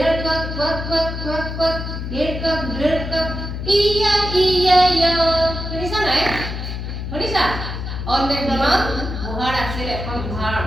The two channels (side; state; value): left; noise; hum, 6 dB below the sound